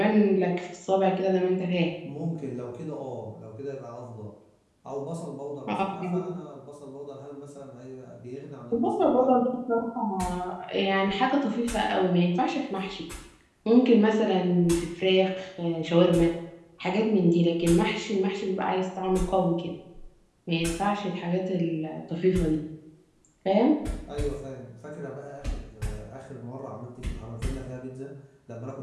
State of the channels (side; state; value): both; identical; correlation 1.00